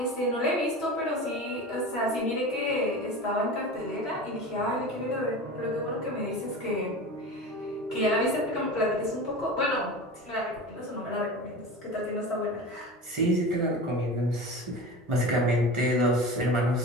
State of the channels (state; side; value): normal; both; correlation 0.31